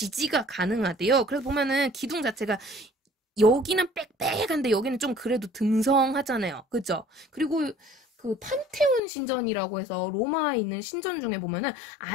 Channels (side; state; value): right; drops out; at 9.0 s